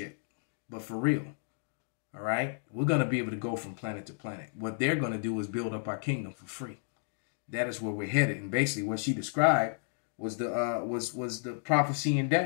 but for real. All right, we're going to be able to go from planet to planet. What they're going to do is build up our kingdom for free. That is where we're headed. And basically, what she described was the prophecy in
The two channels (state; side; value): silent; right; digital silence